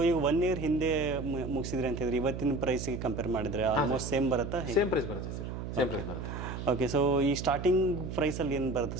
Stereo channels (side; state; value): right; noise; hum, 6 dB below the sound